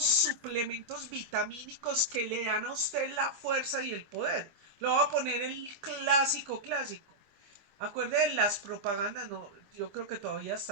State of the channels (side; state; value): left; late; 25 ms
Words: suplementos vitamínicos que le dan a usted la fuerza y el poder. Lo voy a poner el clásico clásico. Acuerde de las propagandas, no, yo creo que todavía